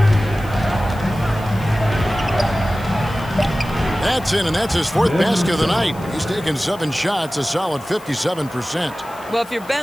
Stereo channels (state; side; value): noise; left; hiss, 22 dB below the sound